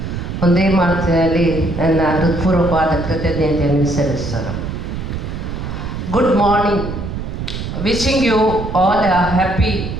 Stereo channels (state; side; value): noise; right; rumble, 6 dB below the sound